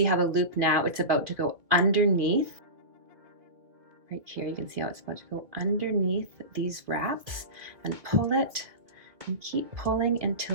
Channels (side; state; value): left; late; 2.0 ms